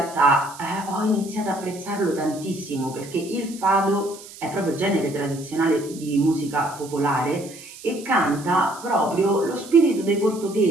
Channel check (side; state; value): right; noise; hiss, 17 dB below the sound